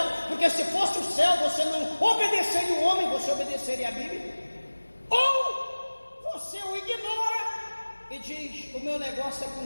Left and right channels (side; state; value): both; inverted; correlation -1.00